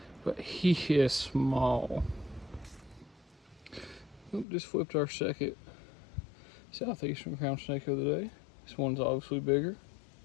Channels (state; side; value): drops out; right; at 4.5 s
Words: But he is small. Just flipped our second southeastern crown snake of the day. This one's obviously bigger.